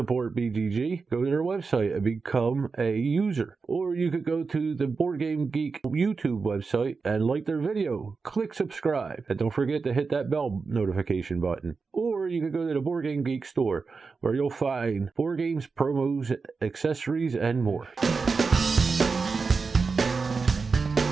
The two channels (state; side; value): quieter; left; 4.7 dB